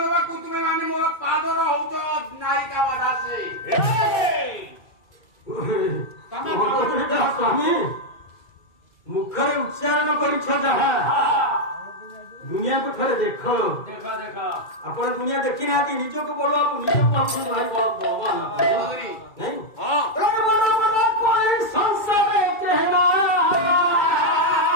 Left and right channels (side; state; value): right; late; 2.3 ms